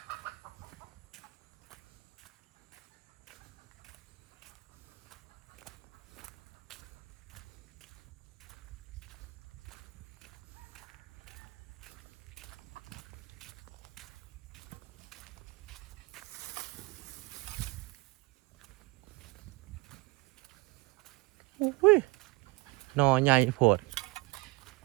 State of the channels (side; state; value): left; quieter; 24.0 dB